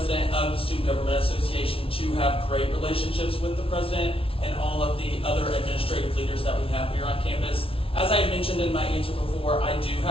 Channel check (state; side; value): late; right; 0.26 ms